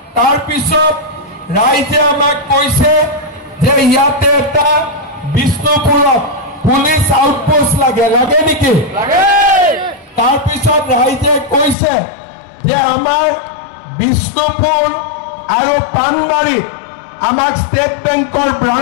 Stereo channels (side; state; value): right; drops out; at 11.8 s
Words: তাৰ পিছত ৰাইজে আমাক কৈছে যে ইয়াতে এটা বিষ্ণুপুৰত পুলিচ আউটপোষ্ট লাগে নেকি? তাৰ পিছত ৰাইজে কৈছে যে আমাৰ বিষ্ণুপুৰ আৰু পানবাৰীত আমাক ষ্টেট বেংকৰ